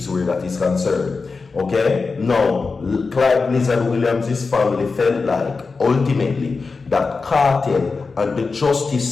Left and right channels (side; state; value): right; quieter; 4.4 dB